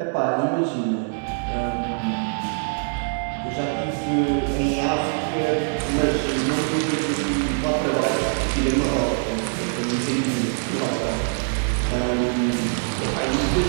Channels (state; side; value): silent; left; 63 dB below the other